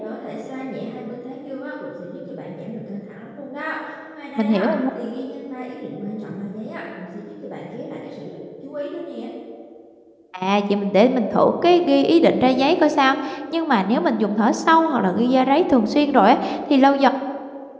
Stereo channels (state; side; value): identical; both; correlation 1.00